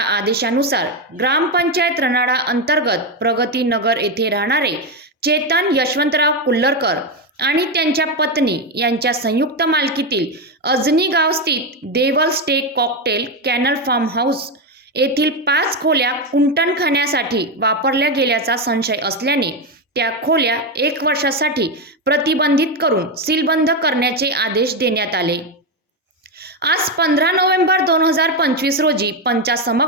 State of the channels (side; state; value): both; normal; correlation 0.09